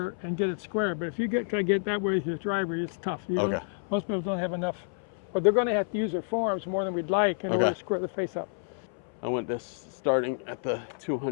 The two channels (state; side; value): silent; right; 58 dB below the other